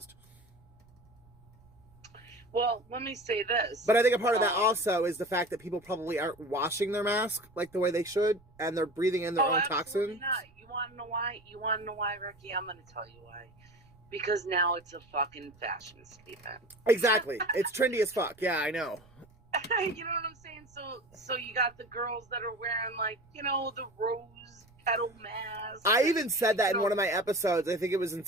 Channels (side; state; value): right; noise; rumble, 28 dB below the sound